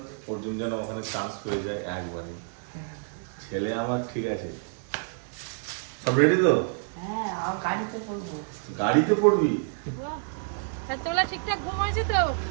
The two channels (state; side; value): silent; left; digital silence